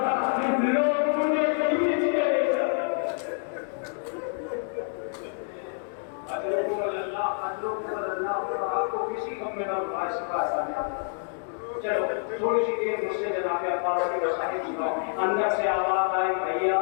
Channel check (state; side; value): silent; right; 60 dB below the other